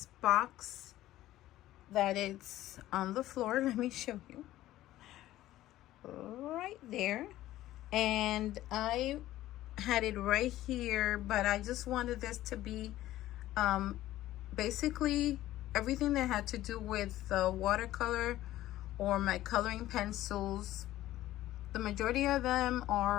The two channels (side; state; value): right; quieter; 14.8 dB